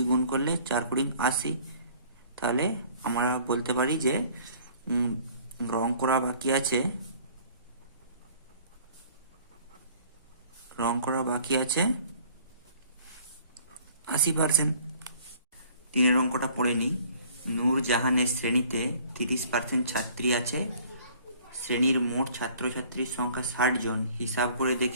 গুণ করলে 4 20 80। তাহলে আমরা বলতে পারি যে রং করা বাকি আছে 80%। 3 অঙ্কটা পড়ে নিই। নূরজাহানের শ্রেণীতে 30% ছাত্রী আছে, শ্রেণীর মোট ছাত্রছাত্রীর সংখ্যা 60 জন। হিসাব করে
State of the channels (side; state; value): both; inverted; correlation -0.54